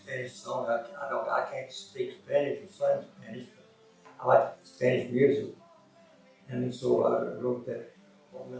song. I can't speak Spanish or sing Spanish, but I like Spanish music, and so I wrote that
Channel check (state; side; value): identical; both; correlation 1.00